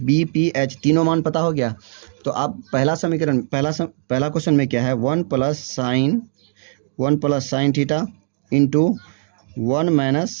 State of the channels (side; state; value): left; silent; digital silence